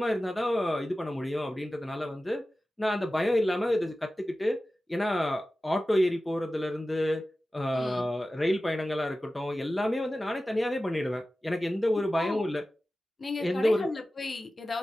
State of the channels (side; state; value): both; normal; correlation 0.95